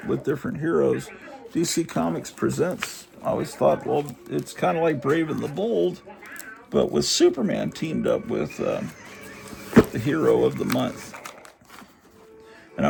with different heroes. DC Comics Presents, I always thought, well, it's kind of like Brave and the Bold, but with Superman teamed up with the hero of the month. And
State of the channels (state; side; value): identical; both; correlation 1.00